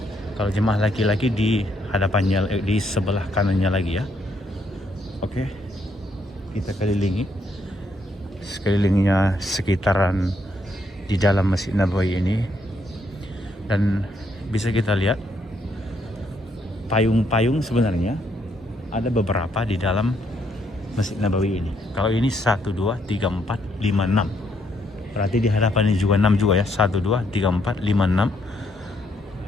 Kalau jemaah laki-laki di hadapannya, di sebelah kanannya lagi ya. Oke, kita kelilingi sekelilingnya sekitaran di dalam Masjid Nabawi ini. Dan bisa kita lihat payung-payung sebenarnya ada beberapa di dalam Masjid Nabawi ini. Kalau ini 1, 2, 3, 4, 5, 6. Berarti di hadapan ini juga 6 juga ya. 1, 2, 3, 4, 5, 6.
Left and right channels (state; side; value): normal; both; correlation 0.73